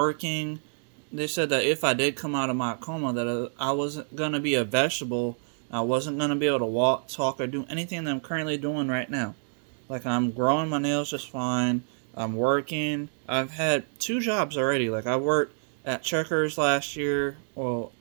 They said that if I did come out of my coma, that I wasn't going to be a vegetable. I wasn't going to be able to walk, talk, or do anything that I'm currently doing right now. I'm growing my nails just fine. I'm working. I've had 2 jobs already. I worked at Checkers last year, well,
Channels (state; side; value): silent; left; digital silence